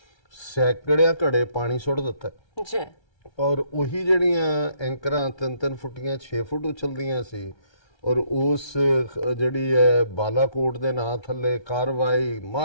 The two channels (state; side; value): late; right; 1.3 ms